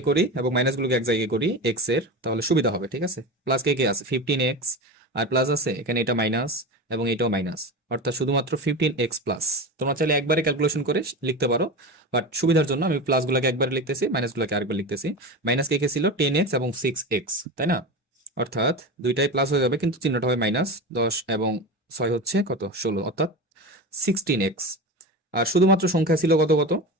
করি এবং মাইনাস গুলোকে এক জায়গায় করি এক্স এর, তাহলে সুবিধা হবে, ঠিক আছে? প্লাস কে আছে 15x, আর প্লাস আছে এখানে এটা মাইনাস এবং এটাও মাইনাস, অর্থাৎ শুধুমাত্র 15x প্লাস। তোমরা চাইলে একবারে ক্যালকুলেশন করে লিখতে পারো, বাট সুবিধার জন্য আমি প্লাস গুলোকে একবারে লিখতেছি, মাইনাস গুলোকে আরেকবার লিখতেছি। মাইনাস কে ছিল 10x এবং 6x, তাই না? অর্থাৎ দুইটাই প্লাস হয়ে যাবে, কিন্তু চিহ্নটা হবে মাইনাস। 10 এবং 6 হচ্ছে কত? 16, অর্থাৎ 16x। আর শুধুমাত্র সংখ্যা ছিল কত কত?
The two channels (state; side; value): normal; both; correlation 0.25